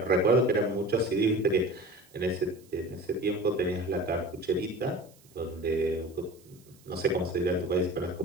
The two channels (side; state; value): right; noise; hiss, 28 dB below the sound